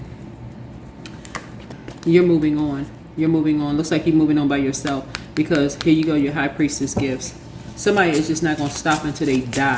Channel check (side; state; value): both; identical; correlation 1.00